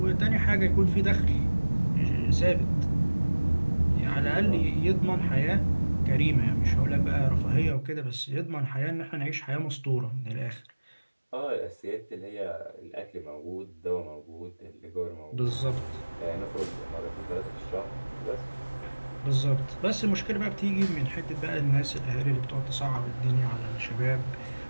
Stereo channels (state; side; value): inverted; both; correlation -1.00